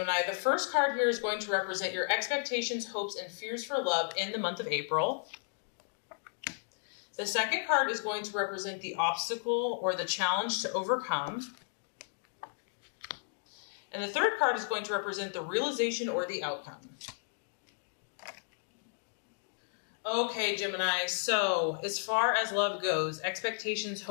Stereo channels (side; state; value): right; silent; digital silence